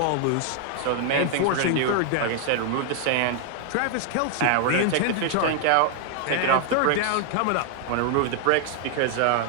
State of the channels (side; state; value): both; different; correlation 0.00